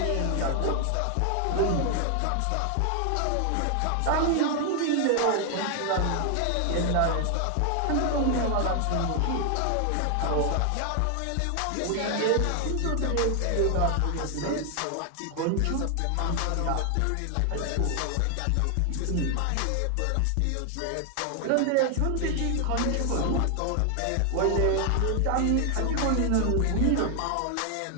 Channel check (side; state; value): both; different; correlation 0.00